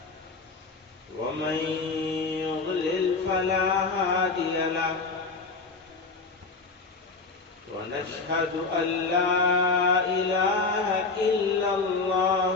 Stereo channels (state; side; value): quieter; right; 4.1 dB